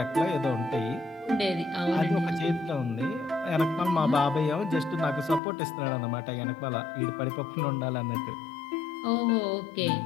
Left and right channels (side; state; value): right; drops out; at 5.4 s